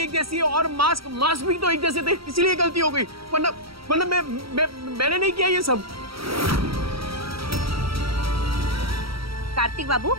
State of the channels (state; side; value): late; left; 0.75 ms